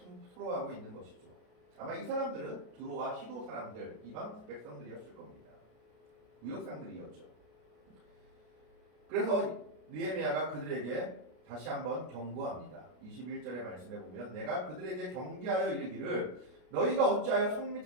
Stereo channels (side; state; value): left; late; 33 ms